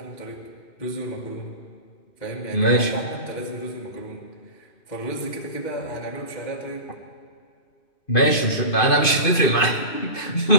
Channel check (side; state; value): right; late; 2.5 ms